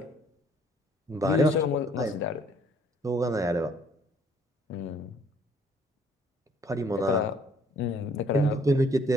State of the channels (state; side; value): normal; both; correlation 0.61